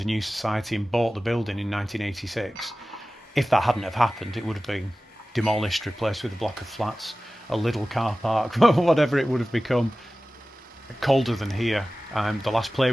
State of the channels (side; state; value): both; normal; correlation 0.96